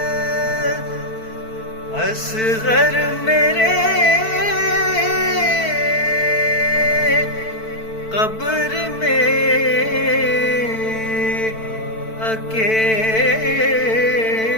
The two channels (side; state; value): right; late; 4.5 ms